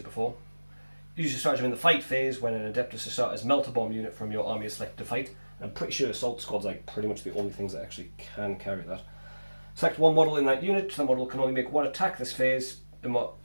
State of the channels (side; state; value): both; inverted; correlation -1.00